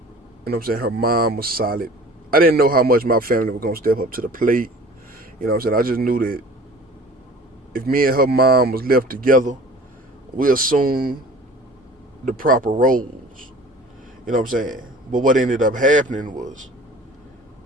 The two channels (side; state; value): both; normal; correlation 0.45